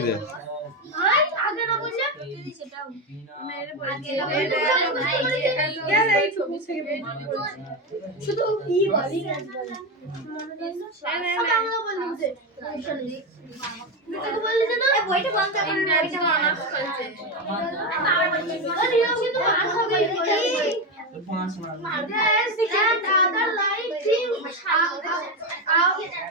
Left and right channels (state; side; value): normal; both; correlation 0.13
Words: দে। আই আগে না বললে সেটাও মেরে পড়ে এই ছবি থেকে বের শুধু কি বলি কাজ বলে না বলতে তুই বললি যে না বইটা বন্ধ করে না, এটা মানা করছে আরে ও কিন্তু আর হবে Yes, and other like him